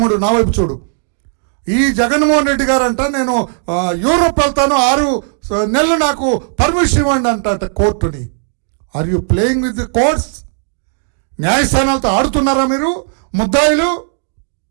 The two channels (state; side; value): silent; left; 57 dB below the other